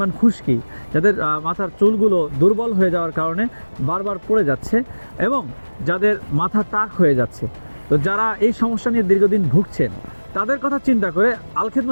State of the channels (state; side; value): inverted; both; correlation -1.00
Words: খুশকি, যাদের মাথার চুলগুলো দুর্বল হয়ে যাওয়ার কারণে বারবার পড়ে যাচ্ছে এবং যাদের মাথা টাক হয়ে যাচ্ছে, তো যারা এই সমস্যা নিয়ে দীর্ঘদিন ভুগছেন, তাদের কথা চিন্তা করে আল